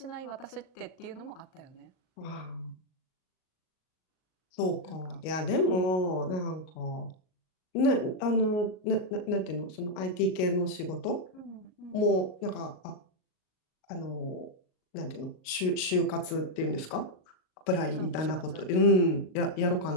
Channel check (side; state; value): right; late; 38 ms